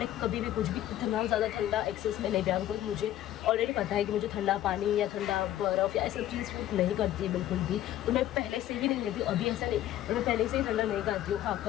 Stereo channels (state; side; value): quieter; right; 13.0 dB